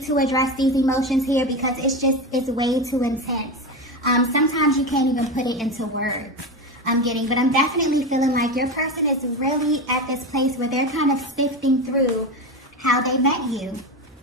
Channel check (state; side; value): normal; both; correlation 0.20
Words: to address these emotions here because it's way too intense. Sometimes you can't even put it into words. But I'm definitely feeling like your person is really at this place where they're kind of sifting through how they met you.